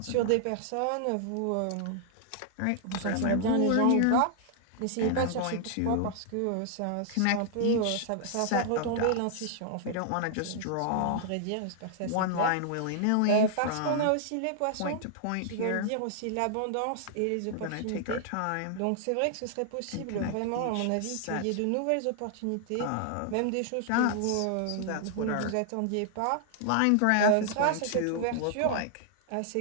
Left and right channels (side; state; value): both; different; correlation -0.01